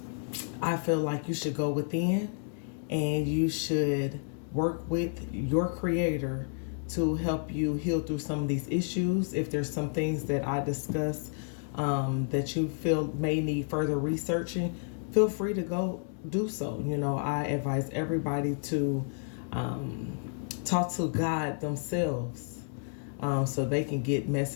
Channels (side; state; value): right; silent; 57 dB below the other